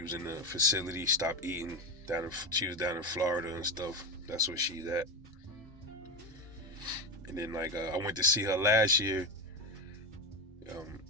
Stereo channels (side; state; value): both; normal; correlation 0.16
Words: was in the facility, stopped eating. She was down in Florida and stuff. That's where she's at. And then I went to see her last year.